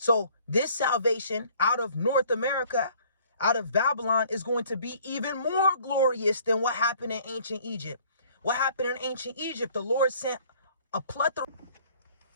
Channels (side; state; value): both; inverted; correlation -0.56